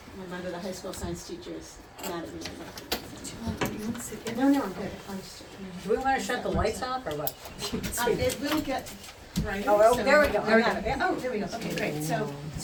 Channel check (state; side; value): identical; both; correlation 1.00